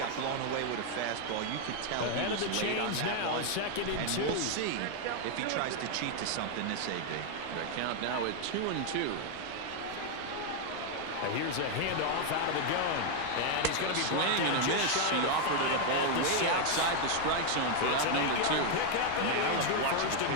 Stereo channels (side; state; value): both; different; correlation 0.01